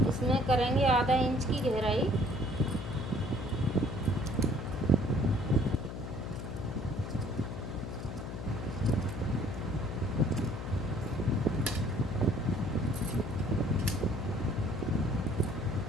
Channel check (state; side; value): noise; left; hum, 7 dB below the sound